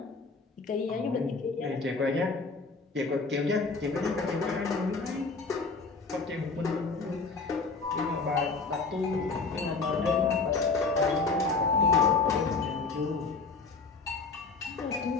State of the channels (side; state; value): right; quieter; 4.3 dB